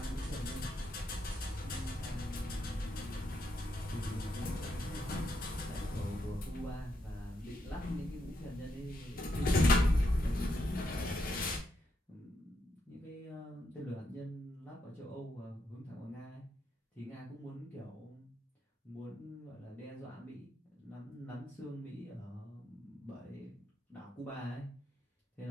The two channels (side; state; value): both; normal; correlation 0.80